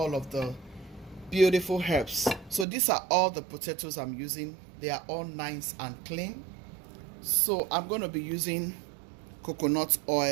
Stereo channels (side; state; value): left; drops out; at 2.7 s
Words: of the beautiful herbs. So these are all the potatoes I'm using. They are all nice and clean. So I'm going to be using coconut